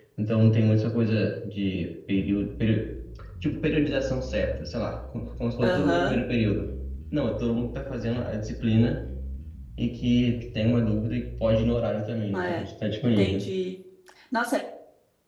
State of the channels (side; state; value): both; identical; correlation 1.00